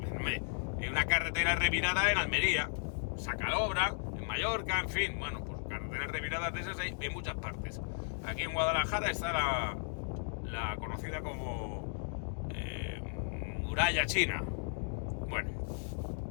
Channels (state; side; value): silent; right; digital silence